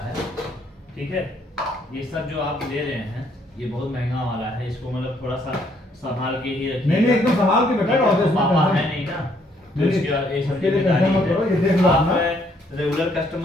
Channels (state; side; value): normal; both; correlation 0.68